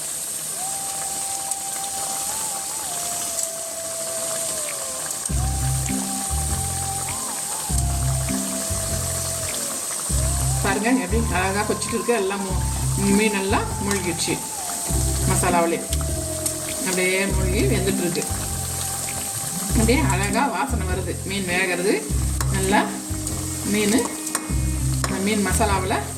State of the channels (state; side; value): identical; both; correlation 1.00